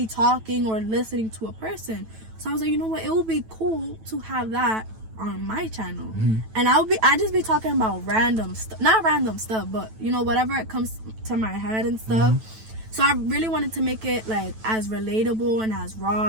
talking or listening to a person. So I was like, you know what, it would be cool to have that on my channel. And I just be talking about random stuff, not random stuff, but you know, whatever it comes to my head and stuff. So I really wanted to make it like as relatable and as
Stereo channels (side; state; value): left; late; 9.1 ms